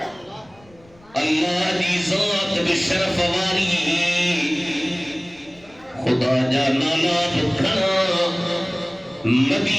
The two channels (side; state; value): left; noise; rumble, 28 dB below the sound